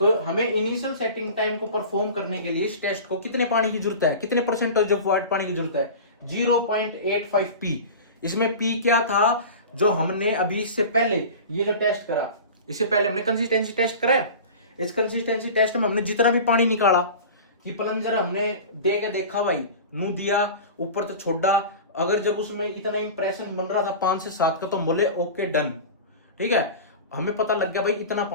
हमें इनिशियल सेटिंग टाइम को परफॉर्म करने के लिए इस टेस्ट को कितने पानी की जरूरत है, कितने परसेंटेज ऑफ वाटर पानी की जरूरत है, 0.85 P। इसमें P क्या था, जो हमने अभी इससे पहले ये जो टेस्ट करा, इससे पहले हमने कंसिस्टेंसी टेस्ट करा है। इस कंसिस्टेंसी टेस्ट में हमने जितना भी पानी निकाला, कि प्लंजर हमने दे के देखा भाई, नू दिया, ऊपर तो छोड़ा, अगर जब उसमें इतना इंप्रेशन बन रहा था 5 से 7 का, तो हम बोले ओके डन। ठीक है, हमें पता लग गया भाई इतना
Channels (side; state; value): both; inverted; correlation -0.34